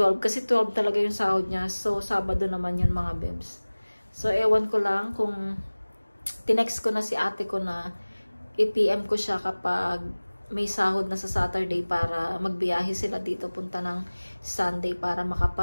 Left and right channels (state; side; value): inverted; both; correlation -1.00